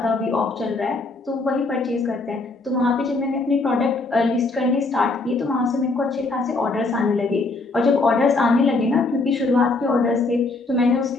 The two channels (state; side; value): quieter; right; 3.4 dB